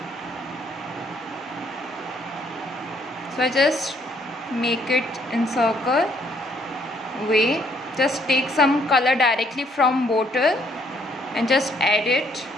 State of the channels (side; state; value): both; normal; correlation 0.67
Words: So I just make it in circle way. Just take some color directly from bottle and just add it.